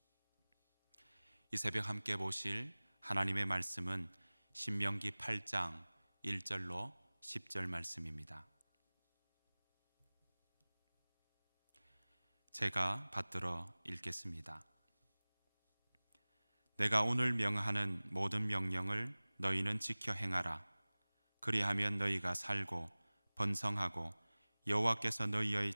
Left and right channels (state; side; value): inverted; both; correlation -1.00